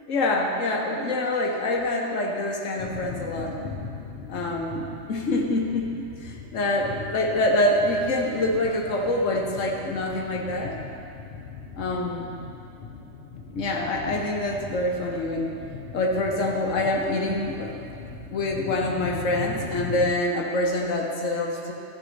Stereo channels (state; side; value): late; right; 3.7 ms